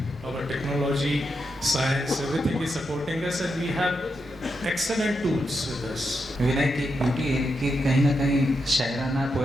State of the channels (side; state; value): both; normal; correlation 0.84